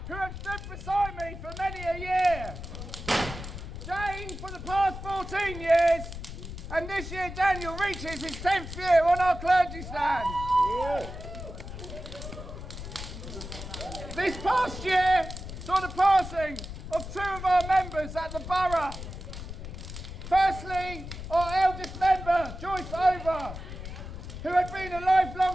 who have stood beside me for many a year. Jane for the past 14 years, and this year Daniel reaches his 10th year on our clergy stand. Yeah. This past year saw the passing of two of our members at the borough. Firstly, our eldest member, Joyce Over, who had been a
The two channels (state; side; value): noise; left; rumble, 10 dB below the sound